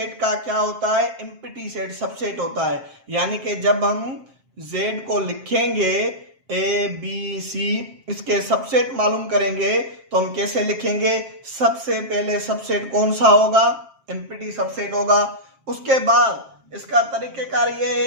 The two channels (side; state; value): left; late; 7.5 ms